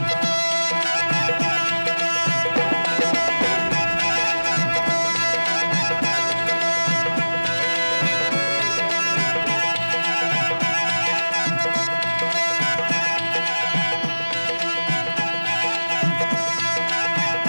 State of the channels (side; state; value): both; inverted; correlation -1.00